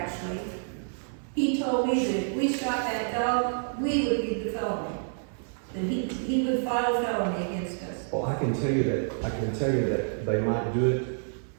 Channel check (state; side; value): silent; left; 59 dB below the other